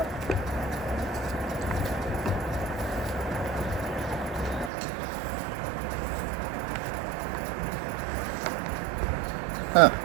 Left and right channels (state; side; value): drops out; left; at 4.7 s